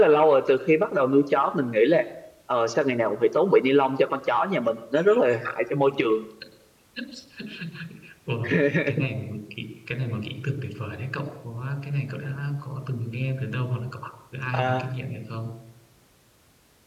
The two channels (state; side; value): identical; both; correlation 1.00